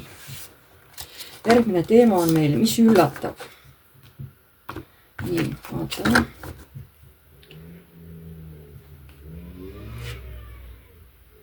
Järgmine teema on meil, mis üllatab. Nii, vaatame.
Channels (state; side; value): identical; both; correlation 1.00